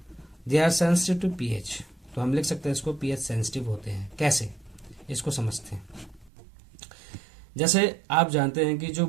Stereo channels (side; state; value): left; drops out; at 6.3 s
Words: they are sensitive to pH। तो हम लिख सकते हैं इसको pH सेंसिटिव होते हैं। कैसे, इसको समझते हैं। जैसे आप जानते हैं कि जो